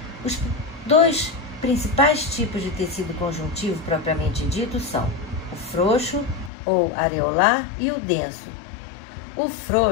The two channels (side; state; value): right; drops out; at 6.5 s